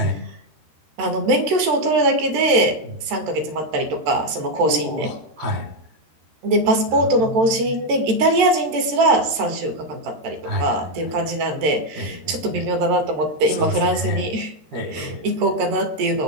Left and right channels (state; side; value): late; left; 13 ms